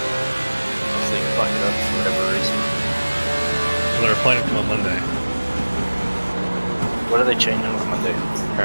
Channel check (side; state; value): both; inverted; correlation -1.00